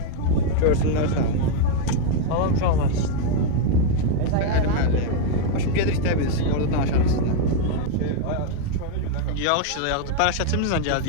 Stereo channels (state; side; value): different; both; correlation 0.00